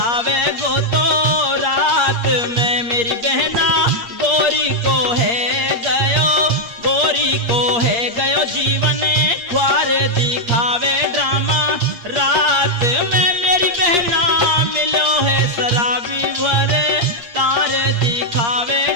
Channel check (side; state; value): left; late; 8.5 ms